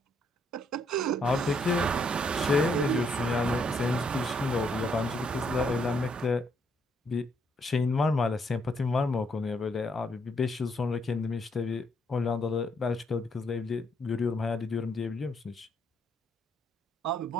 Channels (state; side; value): normal; both; correlation 0.72